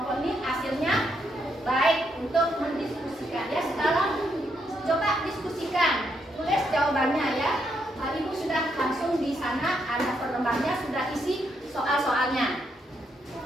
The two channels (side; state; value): both; normal; correlation 0.78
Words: ini hasilnya baik untuk mendiskusikan ya. Sekarang coba diskusikan, tulis jawabannya ya. Ibu sudah langsung di sana ada perlembarnya, sudah isi soal-soalnya.